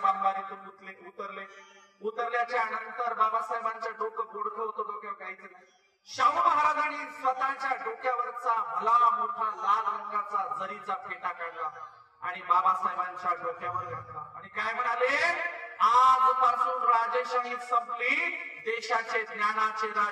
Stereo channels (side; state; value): both; identical; correlation 1.00